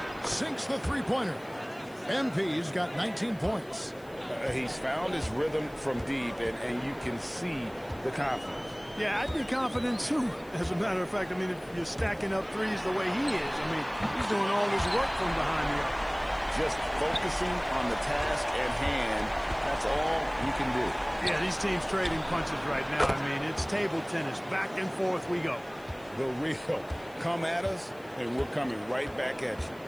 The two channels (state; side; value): noise; left; hiss, 27 dB below the sound